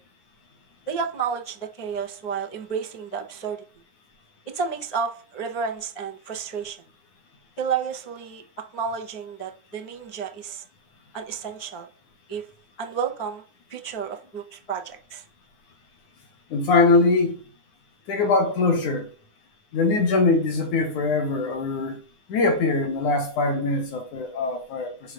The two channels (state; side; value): late; right; 9.7 ms